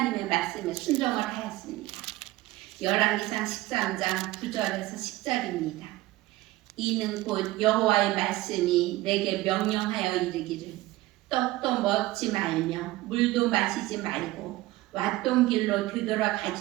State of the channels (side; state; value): left; quieter; 17.9 dB